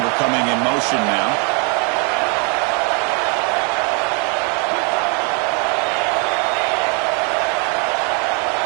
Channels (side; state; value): left; quieter; 35.9 dB